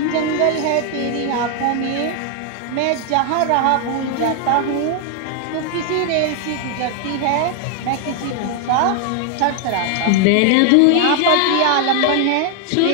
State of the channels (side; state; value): both; different; correlation 0.00